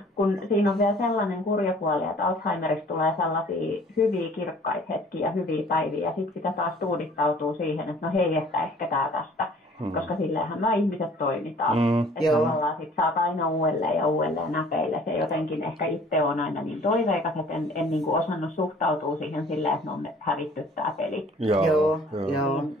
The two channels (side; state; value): both; normal; correlation 0.52